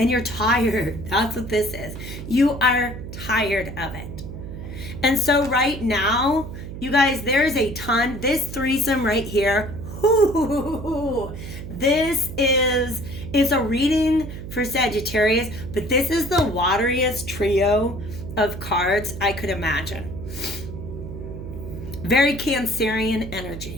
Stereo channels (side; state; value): right; noise; hum, 9 dB below the sound